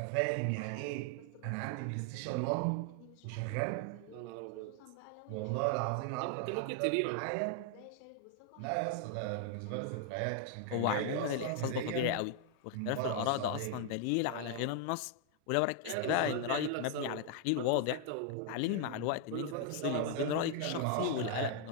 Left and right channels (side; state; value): both; different; correlation 0.00